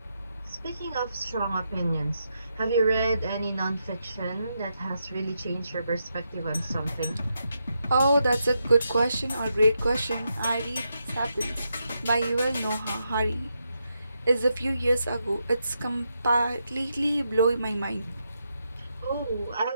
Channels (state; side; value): inverted; both; correlation -0.83